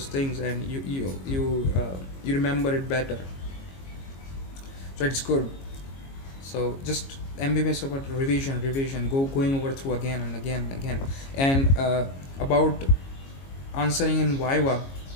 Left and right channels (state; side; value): late; right; 22 ms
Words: things, and you remember it better. So it's good. So just MBBS about revision, going over through again and again and again. And about answering in Viva,